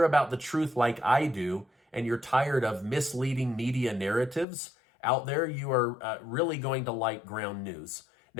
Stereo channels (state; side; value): drops out; right; at 4.5 s